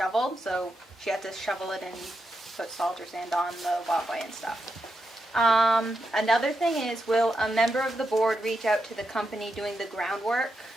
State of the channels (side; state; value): both; normal; correlation 0.85